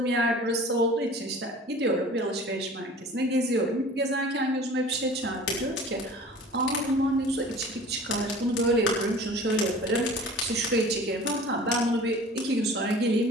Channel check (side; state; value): both; normal; correlation 0.43